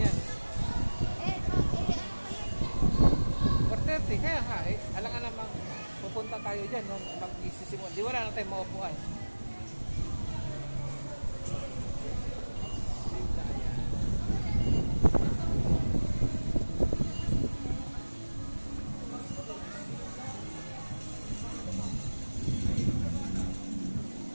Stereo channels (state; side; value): inverted; both; correlation -1.00